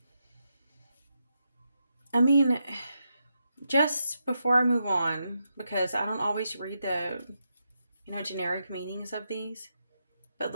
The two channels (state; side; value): inverted; both; correlation -0.84